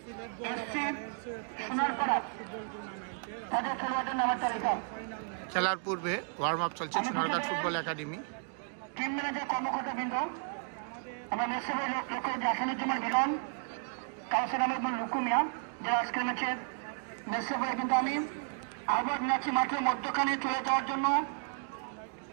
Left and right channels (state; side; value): silent; left; 56 dB below the other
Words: SC Sonarpara, তাদের খেলোয়াড়দের নামের তালিকা। খেলার পূর্বে ওয়ার্ম আপ চলছে Sonarghat football academy. Team manager কর্মকর্তাবৃন্দ, আমরা মেসেবের লক্ষ্য আসানুজ্জামান মিলন, কাউসার আহমেদ লুকুমিয়া, যারা আজকের ম্যাচের মেসেবে, কিন্তু আমি আহ্বান জানাচ্ছি মাঠের মধ্যখানে চলে যাওয়ার জন্য